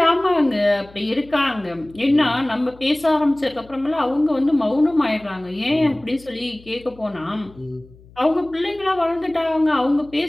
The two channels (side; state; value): left; noise; hum, 24 dB below the sound